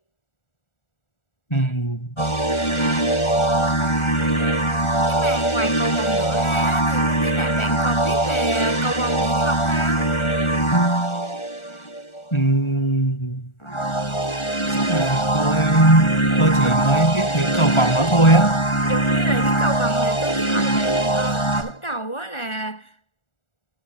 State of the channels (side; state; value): right; late; 1.4 ms